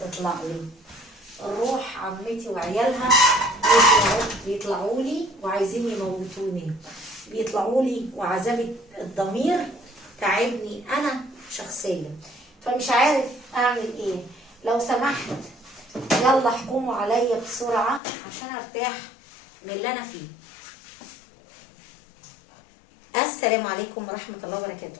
لي، اروح عمتي وعيالها بيطلعوا لي وعايزين يموتوني، بيطلعوا لي وعذاب الضمير تعبني انا شخصيا، فمش عارف اعمل ايه. لو سمحت يلا احكموا عليا بسرعه عشان ارتاح من اللي انا فيه. السلام عليكم ورحمه الله وبركاته.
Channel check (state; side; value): drops out; right; at 18.0 s